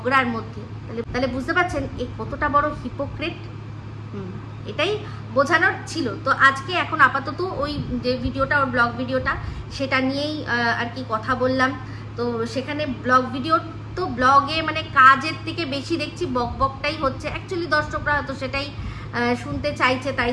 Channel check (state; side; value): identical; both; correlation 1.00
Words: মধ্যে। তাহলে বুঝতে পারছেন এ কতটা বড় হিপোক্রেট। এটাই বোঝানোর ছিল। তো আজকে এখন আপাতত ওই যে ভিডিওটা, ওর ব্লগ ভিডিওটা, সেটা নিয়েই আর কি কথা বললাম। তো সেখানে ব্লগ ভিডিও তো ব্লগে মানে কাজের থেকে বেশি দেখছি বকবকটাই হচ্ছে, অ্যাকচুয়ালি দর্শকরা হয়তো সেটাই শুনতে চাইছে, তাই